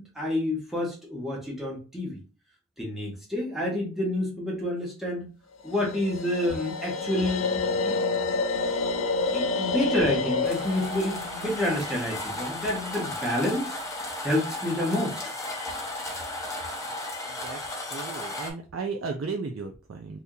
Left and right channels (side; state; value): both; normal; correlation 0.32